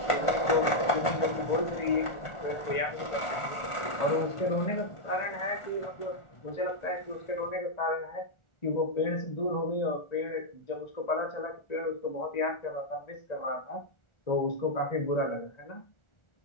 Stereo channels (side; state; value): right; late; 1.5 ms